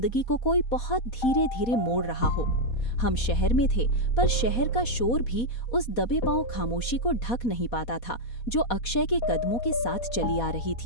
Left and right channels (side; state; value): right; late; 4.2 ms